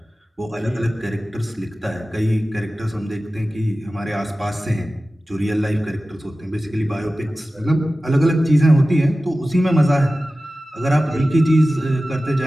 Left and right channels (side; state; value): both; normal; correlation 0.95